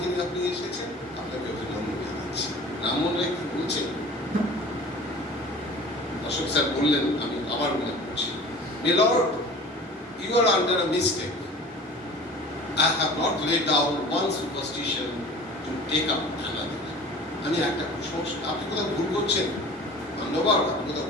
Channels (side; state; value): both; normal; correlation 0.42